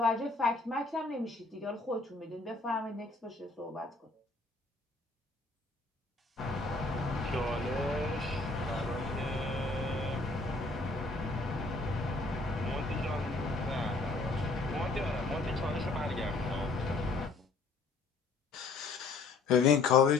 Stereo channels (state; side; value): quieter; right; 3.6 dB